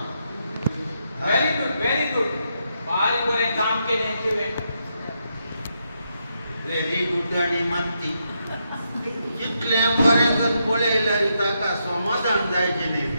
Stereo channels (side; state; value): both; inverted; correlation -0.81